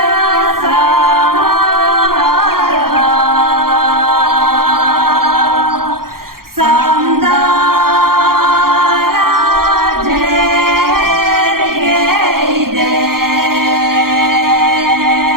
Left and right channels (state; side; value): late; left; 0.92 ms